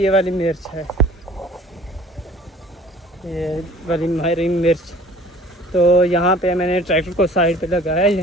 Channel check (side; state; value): both; normal; correlation 0.49